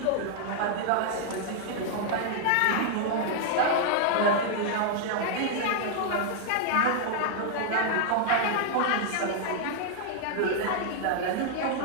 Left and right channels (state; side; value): different; both; correlation 0.00